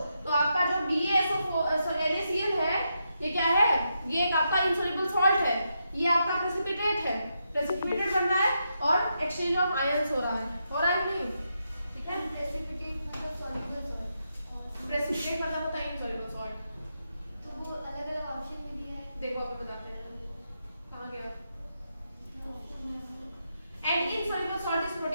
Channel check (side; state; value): both; inverted; correlation -0.83